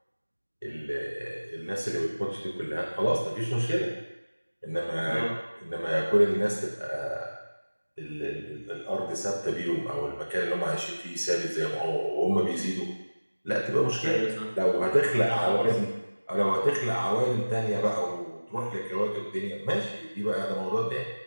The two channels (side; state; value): both; inverted; correlation -1.00